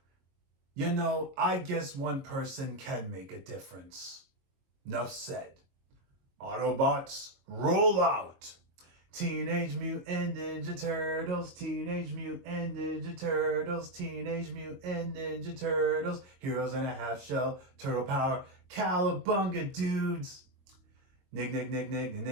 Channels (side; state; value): left; late; 22 ms